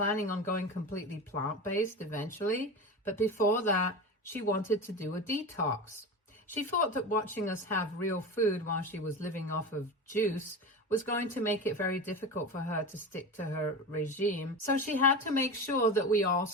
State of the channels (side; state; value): both; normal; correlation 0.26